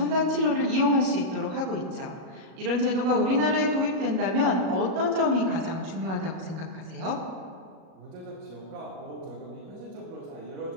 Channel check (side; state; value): left; late; 37 ms